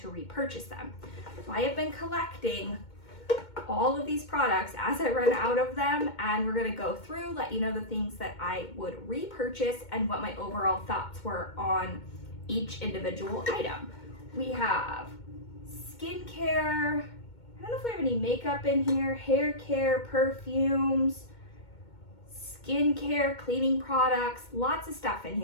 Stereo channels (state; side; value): late; right; 2.2 ms